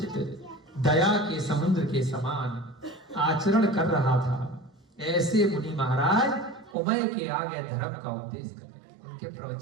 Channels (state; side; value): drops out; left; at 6.8 s